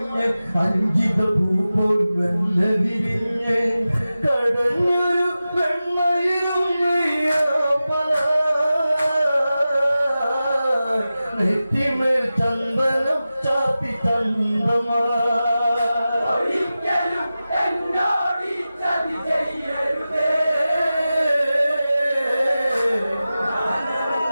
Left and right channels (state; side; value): inverted; both; correlation -0.94